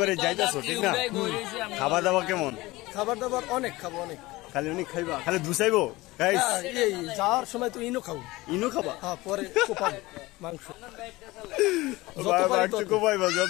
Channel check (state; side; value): quieter; right; 20.2 dB